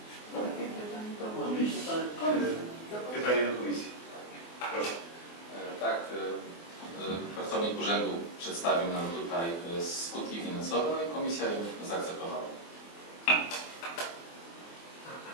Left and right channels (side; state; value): right; late; 24 ms